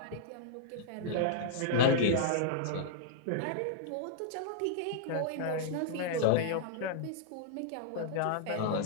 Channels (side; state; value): both; different; correlation -0.02